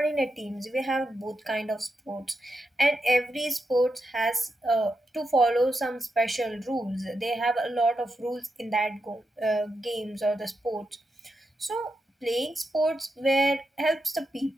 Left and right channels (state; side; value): normal; both; correlation 0.86